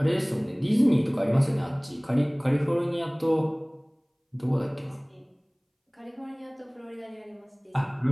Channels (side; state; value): both; identical; correlation 1.00